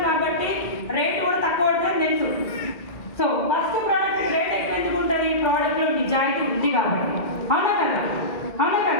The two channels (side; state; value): right; late; 2.0 ms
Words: కాబట్టి రేట్ కూడా తక్కువ పడుతుంది తెలుసు. సో ఫస్ట్ ప్రోడక్ట్ రేట్ ఎక్కువ ఎందుకు ఉంటుంది? ప్రోడక్ట్లో నిజాయితీ ఉంది కాబట్టి, అవునా కదా? అవునా